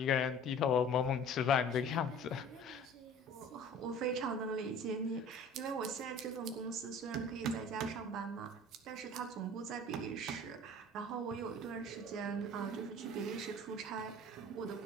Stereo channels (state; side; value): normal; both; correlation 0.45